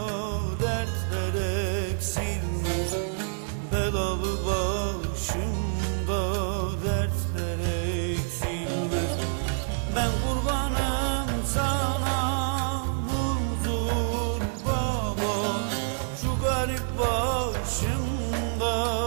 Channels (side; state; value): left; silent; 59 dB below the other